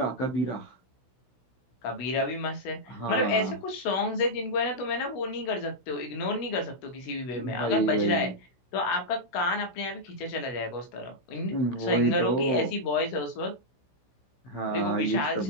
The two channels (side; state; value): right; late; 16 ms